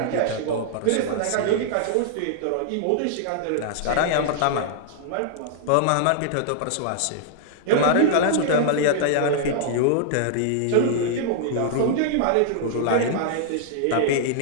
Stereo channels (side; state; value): both; different; correlation -0.01